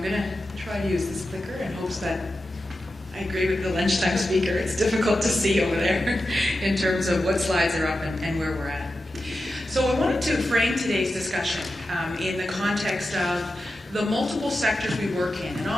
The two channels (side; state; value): both; normal; correlation 0.91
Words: going to try to use this clicker in hopes that I agree with the lunchtime speaker. It's difficult to see over there in terms of what slides are up and where we're at. So I wanted to frame today's discussion in the context of the multiple sectors we work in. And